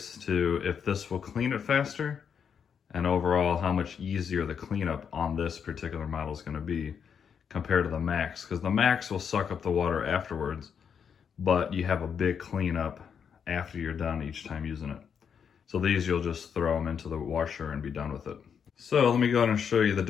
to if this will clean it faster, and overall how much easier the cleanup on this particular model is going to be compared to the Max, because the Max will suck up the water afterwards, but you have a big cleanup after you're done each time using it. So these you'll just throw them into the washer and be done with it. So let me go ahead and show you the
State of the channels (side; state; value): right; quieter; 7.2 dB